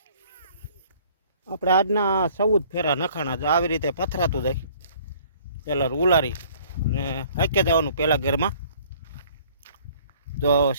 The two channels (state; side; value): inverted; both; correlation -0.56